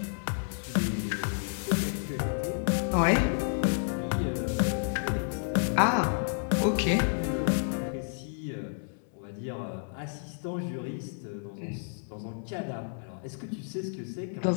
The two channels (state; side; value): silent; right; digital silence